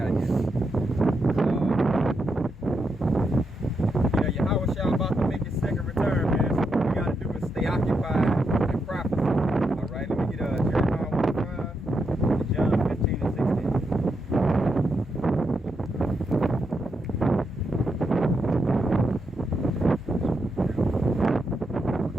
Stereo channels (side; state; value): both; normal; correlation 0.83